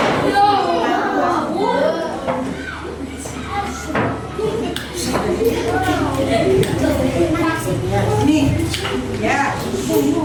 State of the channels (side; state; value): both; identical; correlation 1.00